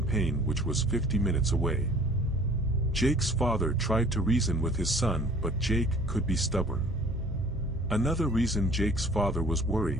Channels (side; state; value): both; normal; correlation 0.50